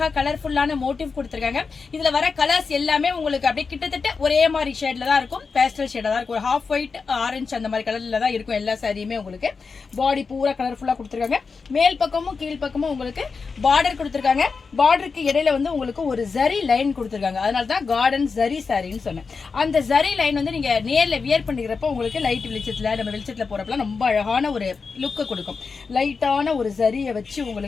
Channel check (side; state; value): right; quieter; 4.9 dB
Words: கலர்ஃபுல்லான மோட்டிவ் கொடுத்துருக்காங்க. இதுல வர கலர்ஸ் எல்லாமே உங்களுக்கு அப்படியே கிட்டத்தட்ட ஒரே மாதிரி ஷேட்ல தான் இருக்கும். பேஸ்டல் ஷேடா தான் இருக்கும். ஒரு ஹாஃப் ஒயிட் ஆரஞ்சு அந்த மாதிரி கலர்ல தான் இருக்கும் எல்லா சாரியுமே. உங்களுக்கு பாடி பூரா கலர்ஃபுல்லா கொடுத்துருக்காங்க. மேல் பக்கமும் கீழ் பக்கமும் உங்களுக்கு பார்டர் கொடுத்துருக்காங்க. பார்டருக்கு இடையில வந்து உங்களுக்கு ஒரு ஜரி லைன் கொடுத்துருக்காங்க. அதனால தான் கார்டன் ஜரி சாரின்னு சொன்னேன். அந்த ஜரி லைன் வந்து நீங்க நேர்ல வியர் பண்ணிக்கிறப்ப உங்களுக்கு லைட் வெளிச்சத்துல நம்ம வெளிச்சத்துல போறப்பலாம் ரொம்ப அழகான ஒரு லுக்கு கொடுக்கும். லைட்டான ஒரு ஜரியை வச்சு